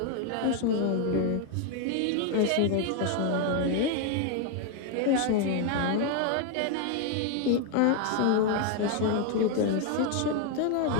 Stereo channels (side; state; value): both; different; correlation 0.00